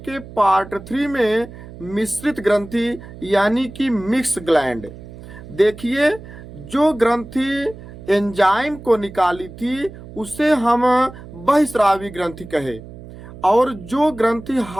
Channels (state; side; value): noise; right; hum, 16 dB below the sound